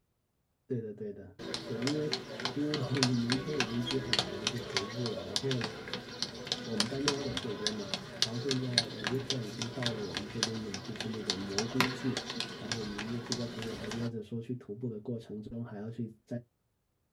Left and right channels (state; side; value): identical; both; correlation 1.00